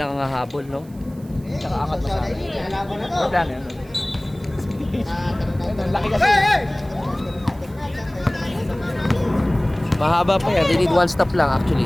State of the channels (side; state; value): right; noise; hiss, 27 dB below the sound